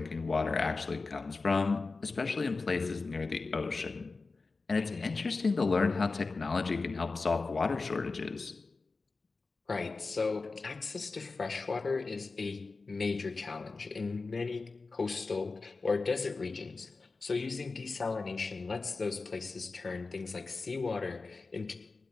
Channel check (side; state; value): right; quieter; 4.0 dB